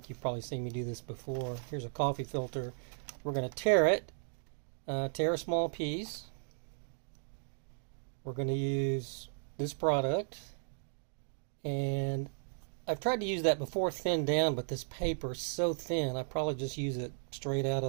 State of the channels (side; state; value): left; silent; digital silence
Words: you've probably seen me do this before. Here's a coffee filter. We're going to tear it. Tear a small piece. We're going to use this product, and I've tried to use that before thinned down, but this paper is so thin I probably just use it straight out